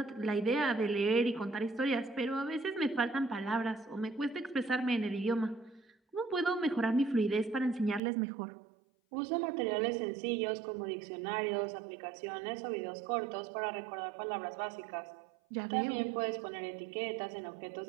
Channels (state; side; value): drops out; left; at 8.0 s